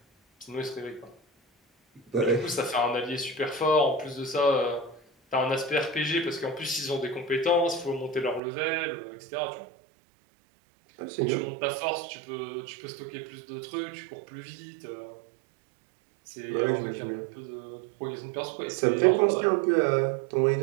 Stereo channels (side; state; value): left; drops out; at 8.4 s